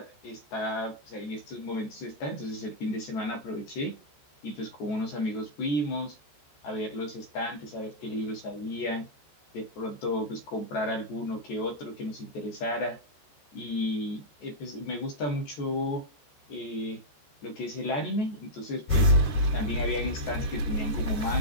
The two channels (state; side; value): late; right; 14 ms